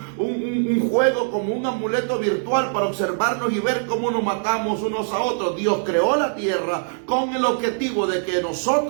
juego como un amuleto virtual para observarnos y ver cómo nos matamos unos a otros. Dios creó la tierra con el objetivo de que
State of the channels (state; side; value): silent; left; digital silence